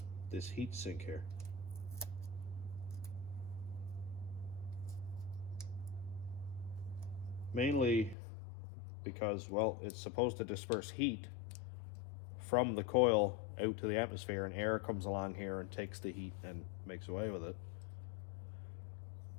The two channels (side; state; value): right; drops out; at 8.2 s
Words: this heat sink here. Mainly because, well, it's supposed to disperse heat from the coil out to the atmosphere, and air comes along here and takes the heat and makes away with it.